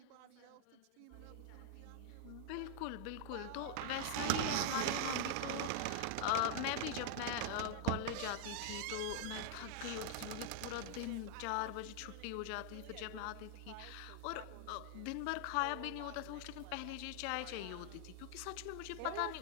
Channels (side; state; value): both; different; correlation 0.00